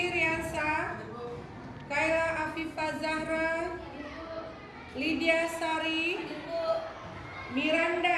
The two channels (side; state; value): both; identical; correlation 1.00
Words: Riansa, Kaila Afifah Zahra, Lydia Sari,